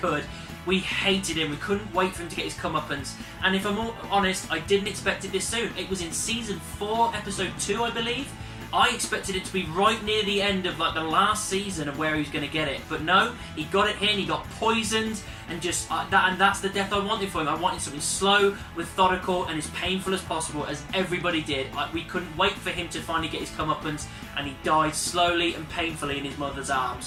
We hated him. We couldn't wait for him to get his comeuppance. And if I'm honest, I didn't expect it this soon. It was in Season 4, Episode 2, I believe. I expected it to be right near the end of like the last season of where he was going to get it, but no, he got it here and he got poisoned, and just that's the death I wanted for him. I wanted something slow, methodical, and as painful as possible, as everybody did. We couldn't wait for him to finally get his comeuppance, and he died slowly and painfully in his mother's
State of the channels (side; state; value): both; identical; correlation 1.00